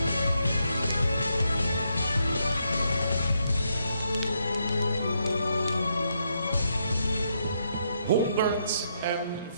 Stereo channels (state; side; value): inverted; both; correlation -0.78